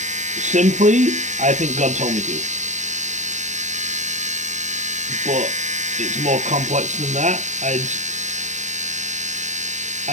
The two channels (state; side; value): late; left; 0.35 ms